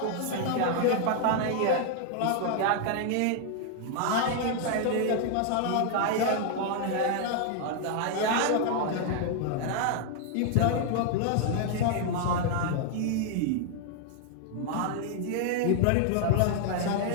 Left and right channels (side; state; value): both; different; correlation 0.00